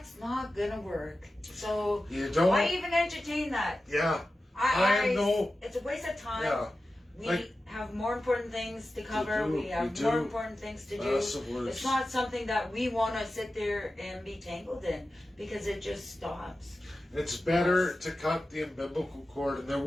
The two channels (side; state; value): both; normal; correlation 0.94